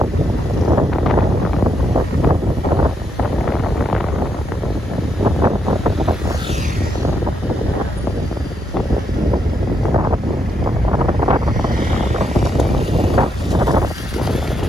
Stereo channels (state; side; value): normal; both; correlation 0.79